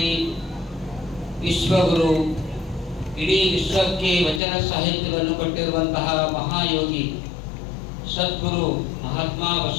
ವಿಶ್ವಗುರು ಇಡೀ ವಿಶ್ವಕ್ಕೆ ವಚನ ಸಾಹಿತ್ಯವನ್ನು ಕೊಟ್ಟಿರುವಂತಹ ಮಹಾಯೋಗಿ ಸದ್ಗುರು ಮಹಾತ್ಮ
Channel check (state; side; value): drops out; right; at 4.4 s